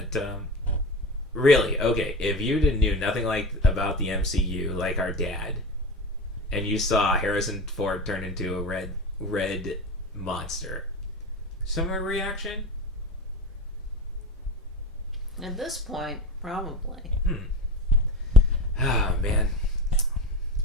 really, okay, if you knew nothing about the MCU, like our dad, and you saw Harrison Ford turn into a red monster, similar reaction? At this point, probably. Oh, man.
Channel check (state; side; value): normal; both; correlation 0.28